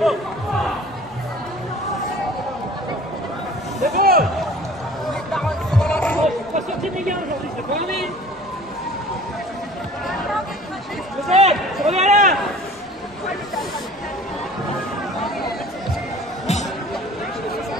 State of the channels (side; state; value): both; normal; correlation 0.47